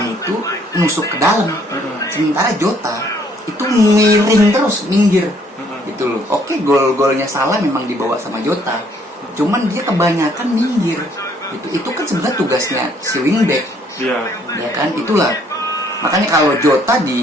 itu nusuk ke dalam. Sementara Jota itu miring terus, minggir gitu loh. Oke, gol-golnya Salah memang dibawa sama Jota, cuman dia kebanyakan minggir gitu. Itu kan sebenarnya tugasnya si wingback. Iya. Ya kan, itulah makanya kalau Jota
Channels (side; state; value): both; normal; correlation 0.64